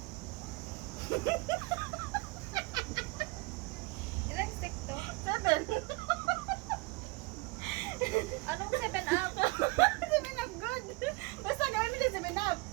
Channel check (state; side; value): quieter; left; 24.6 dB